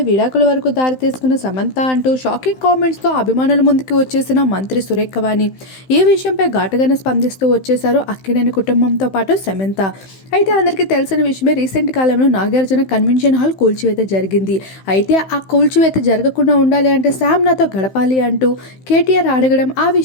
విడాకుల వరకు దారితీసుకున్న సమంత అంటూ షాకింగ్ కామెంట్స్తో అభిమానుల ముందుకు వచ్చేసిన మంత్రి సురేఖ వాణి ఈ విషయంపై ఘాటుగానే స్పందిస్తూ వచ్చేశారు అక్కినేని కుటుంబంతో పాటు సమంత. అయితే అందరికీ తెలిసిన విషయమే, రీసెంట్ కాలంలో నాగార్జున కన్వెన్షన్ హాల్ కూల్చివేత జరిగింది. అయితే ఆ కూల్చివేత జరగకుండా ఉండాలి అంటే శామ్ నాతో గడపాలి అంటూ కేటీఆర్ అడగడం, ఆ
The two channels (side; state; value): right; late; 15 ms